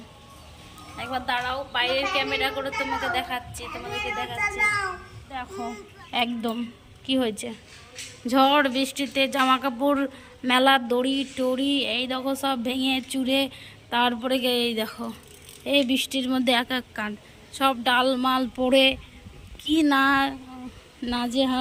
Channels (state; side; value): identical; both; correlation 1.00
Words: একবার দাঁড়াও, বাইরের ক্যামেরা করে তোমাদেরকে দেখাচ্ছি। দেখো একদম কি হয়েছে। ঝড় বৃষ্টিতে জামা কাপড় মেলার দড়ি টড়ি এই দেখো সব ভেঙে চুরে, তারপরে এই দেখো এই বৃষ্টির মধ্যে এক এক কাণ্ড, সব ডাল মাল পড়ে কি